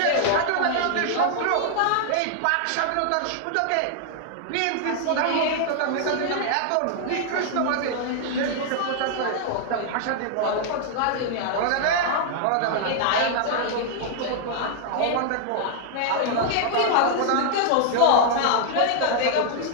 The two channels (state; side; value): different; both; correlation 0.00